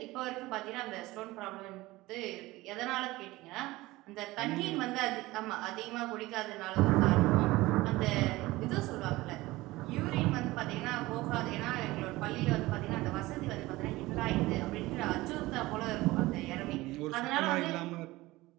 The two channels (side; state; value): left; quieter; 19.3 dB